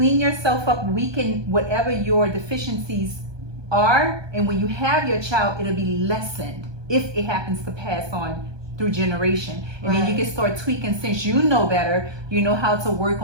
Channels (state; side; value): late; left; 1.2 ms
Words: yourself up, weaken whatever your deficiencies are, and when you have your child, it'll be lessened if it happens to pass on through generation. And then you can start tweaking, since you know better, you know how to work